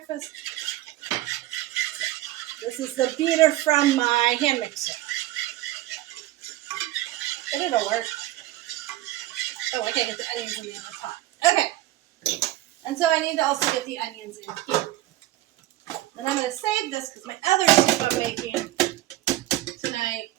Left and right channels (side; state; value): left; quieter; 15.8 dB